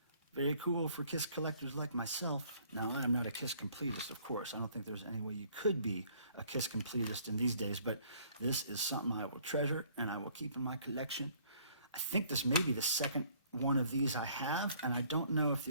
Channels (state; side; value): inverted; both; correlation -0.60